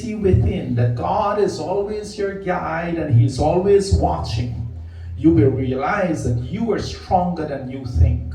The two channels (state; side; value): identical; both; correlation 1.00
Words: within, that God is always your guide and He's always watching, you will realize that you are stronger than you think.